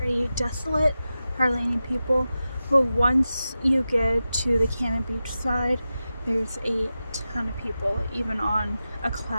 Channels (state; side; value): inverted; both; correlation -0.93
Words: desolate, hardly any people. But once you get to the Cannon Beach side, there's a ton of people, even on a